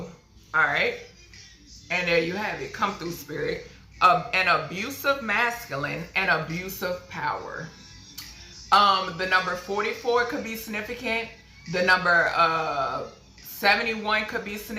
alright. And there you have it. Come through, Spirit. An abusive masculine and abusive power. The number 44 could be significant. The number 71 could be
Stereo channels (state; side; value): identical; both; correlation 1.00